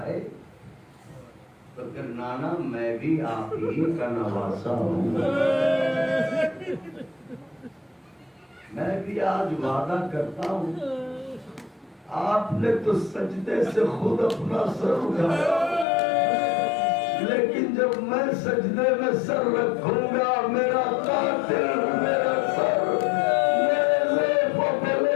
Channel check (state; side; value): drops out; right; at 15.9 s